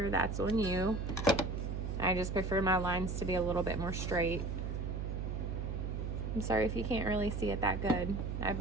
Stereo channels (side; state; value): right; noise; hum, 3 dB below the sound